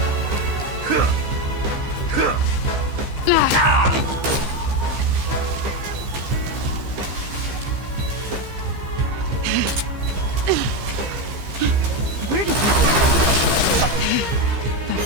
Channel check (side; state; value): left; late; 15 ms